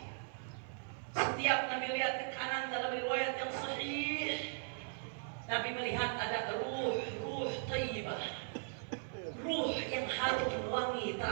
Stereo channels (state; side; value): silent; left; 52 dB below the other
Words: Setiap Nabi lihat ke kanan dalam riwayat yang sahih, Nabi melihat ada ruh thayyibah, ruh yang harum wangi